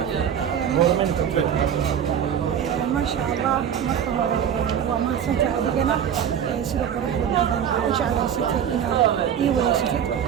ما شاء الله مرحبا وما سنت أدينا سيد قرب وجه على ستة إيوه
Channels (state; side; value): quieter; left; 8.8 dB